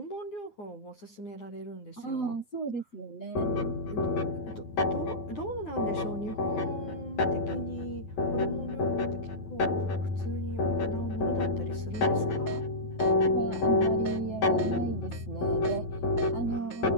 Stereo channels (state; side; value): late; right; 8.9 ms